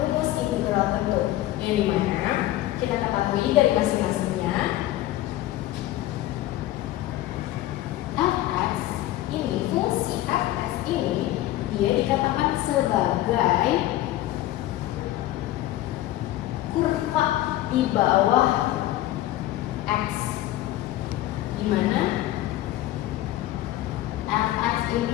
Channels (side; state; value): right; quieter; 15.0 dB